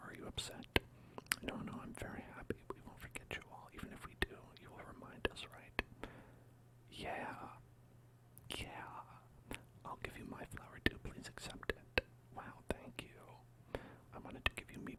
Are you upset? No, I'm very happy. We won't forget you all. Even if we do, you will remind us, right? Yeah. I'll give you my flower too. Please accept it. Wow, thank you. I wanted to give you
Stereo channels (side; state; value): both; identical; correlation 1.00